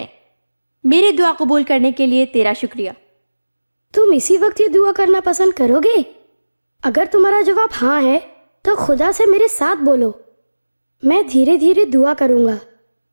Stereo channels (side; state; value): both; inverted; correlation -1.00